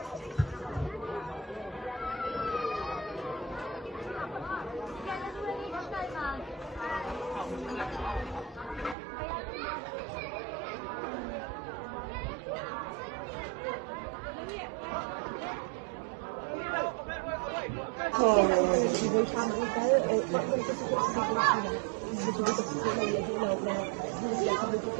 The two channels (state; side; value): drops out; left; at 9.0 s